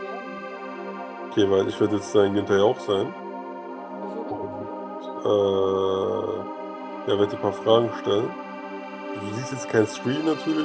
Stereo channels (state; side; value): identical; both; correlation 1.00